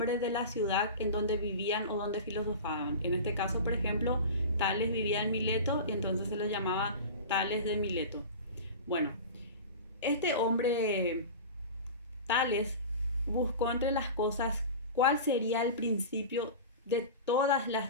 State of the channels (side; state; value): both; inverted; correlation -0.31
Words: de la ciudad en donde vivían o donde filosofaban. En este caso, por ejemplo, Tales vivía en Mileto y entonces se le llamaba Tales de Mileto. Bueno, este hombre Tales buscó entre las cosas cuál sería el principio de todas las